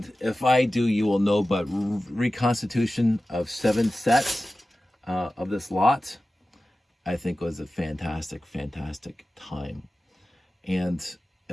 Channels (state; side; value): normal; both; correlation 0.95